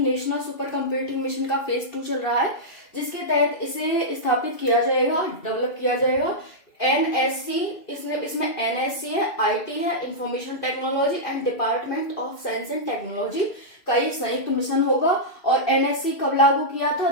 सुपर कंप्यूटिंग मिशन का फेज 2 चल रहा है, जिसके तहत इसे स्थापित किया जाएगा, डेवलप किया जाएगा। एनएससी, इसमें एनएससी है, आईटी है, information technology and department of science and technology का एक संयुक्त मिशन होगा। और एनएससी कब लागू किया था?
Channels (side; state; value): right; late; 2.5 ms